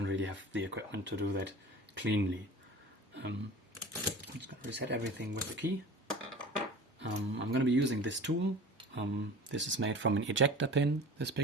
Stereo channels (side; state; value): both; normal; correlation 0.38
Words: really have the equipment to do that cleanly. I'm just going to reset everything with the key. I'm going to be using this tool. This is made from an ejector pin, this